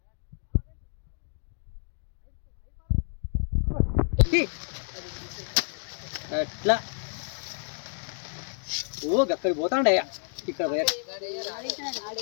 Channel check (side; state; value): right; silent; digital silence